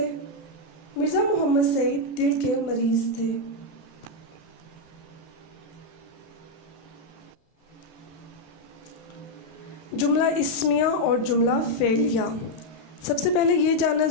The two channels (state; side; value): late; right; 32 ms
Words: مرزا محمد سعید دل کے مریض تھے۔ جملہ اسمیہ اور جملہ فعلیہ۔ سب سے پہلے یہ جاننا